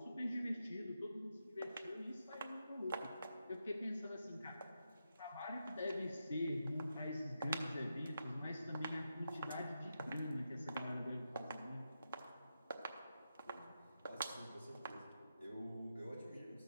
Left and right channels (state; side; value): inverted; both; correlation -0.86